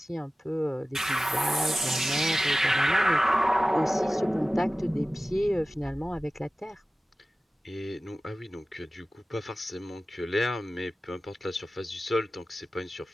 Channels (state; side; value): normal; both; correlation 0.96